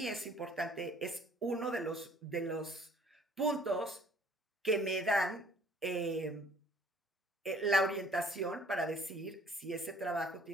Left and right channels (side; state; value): both; normal; correlation 0.56